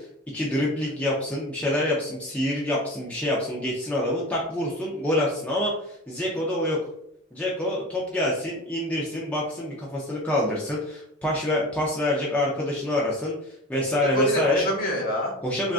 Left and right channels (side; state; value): both; normal; correlation 0.33